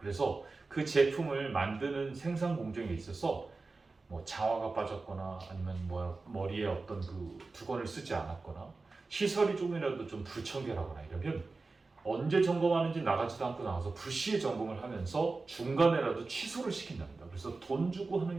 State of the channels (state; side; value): quieter; left; 3.8 dB